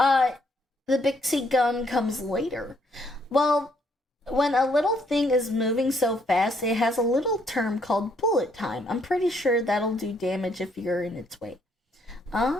The Pixie gun comes later. Well, when a little thing is moving so fast, it has a little term called bullet time. I'm pretty sure that'll do damage if you're in its way.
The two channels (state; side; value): normal; both; correlation 0.70